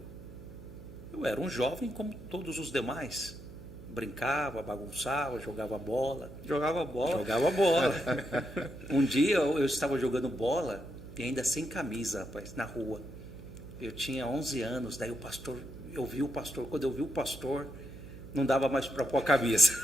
Eu era um jovem como todos os demais. Brincava, bagunçava, jogava bola. Jogava bola? Jogava bola. Um dia eu estava jogando bola e ainda sem camisa, rapaz, na rua. Eu tinha 11 anos, daí eu vi o pastor. Quando eu vi o pastor, não dava mais para pôr a camisa.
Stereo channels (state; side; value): noise; right; hum, 16 dB below the sound